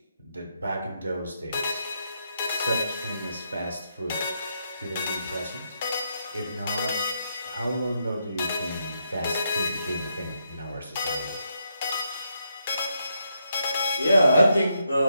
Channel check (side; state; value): both; inverted; correlation -0.80